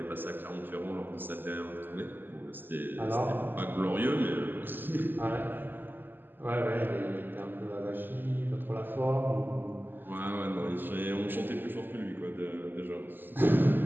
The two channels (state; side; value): late; left; 0.093 ms